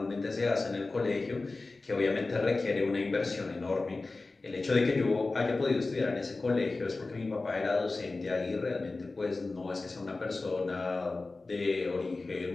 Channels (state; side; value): quieter; right; 3.5 dB